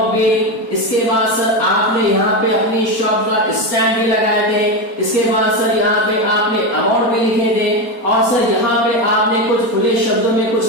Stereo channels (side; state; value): right; late; 4.3 ms